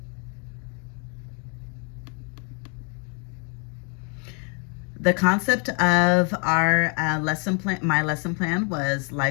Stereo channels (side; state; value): right; quieter; 37.1 dB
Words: The concept of our lesson plan, my lesson plan, was